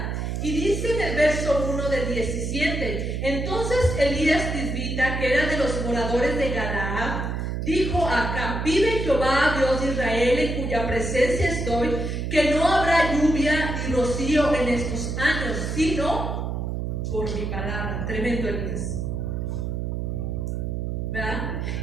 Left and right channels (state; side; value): noise; right; hum, 2 dB below the sound